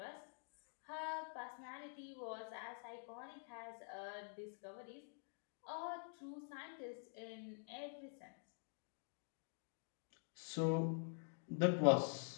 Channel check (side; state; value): right; silent; digital silence